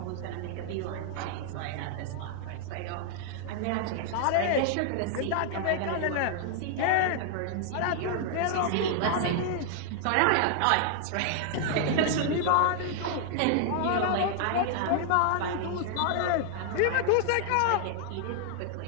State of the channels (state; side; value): different; both; correlation -0.01